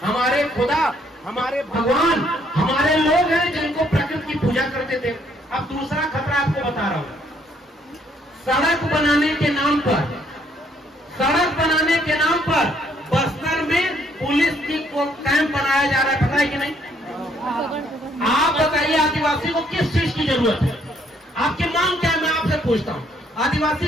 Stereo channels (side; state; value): both; normal; correlation 0.67